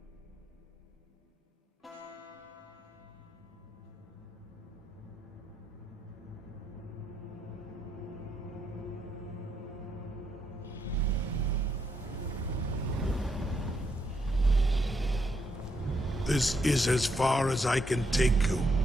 This is as far as I can take you.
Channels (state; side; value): normal; both; correlation 0.77